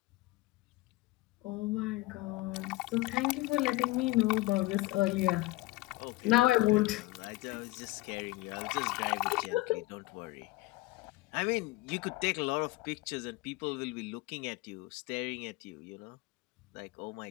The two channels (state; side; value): quieter; right; 19.3 dB